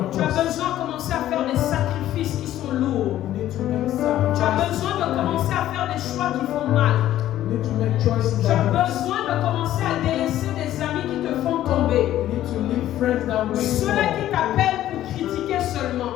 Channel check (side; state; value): right; quieter; 13.0 dB